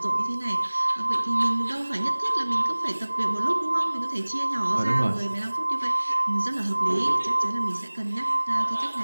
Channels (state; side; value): inverted; both; correlation -1.00